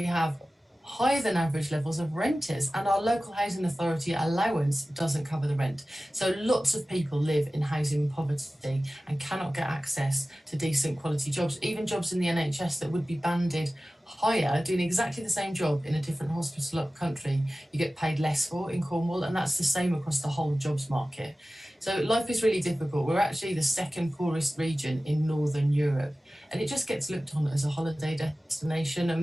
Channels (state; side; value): normal; both; correlation 0.96